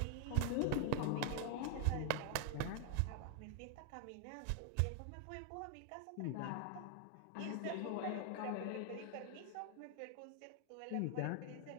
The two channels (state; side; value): different; both; correlation 0.00